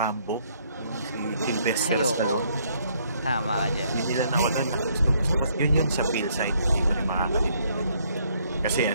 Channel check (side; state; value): both; inverted; correlation -0.68